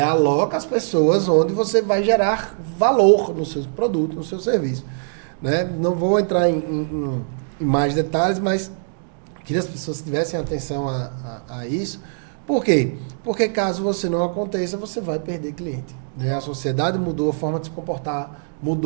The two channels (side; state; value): left; silent; digital silence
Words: as pessoas onde você vai gerar valor no seu produto, no seu serviço. Né? Não vou entrar em mais detalhes, mas queria que as pessoas tivessem atenção a isso. Por quê? Porque caso você não aconteça, você vai perder cliente. Né? A sociedade mudou, a forma de se comportar